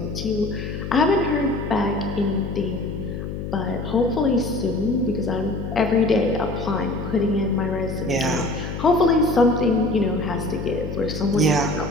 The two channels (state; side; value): noise; left; hum, 6 dB below the sound